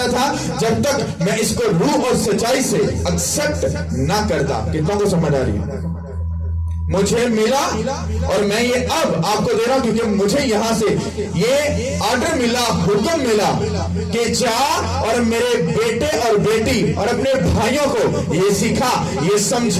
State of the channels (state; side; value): identical; both; correlation 1.00